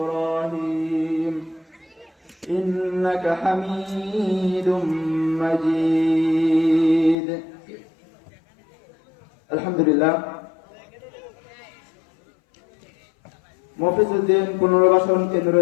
إنك حميد مجيد. الحمد لله. মফিজউদ্দিন পুনর্বাসন কেন্দ্র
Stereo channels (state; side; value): drops out; right; at 7.2 s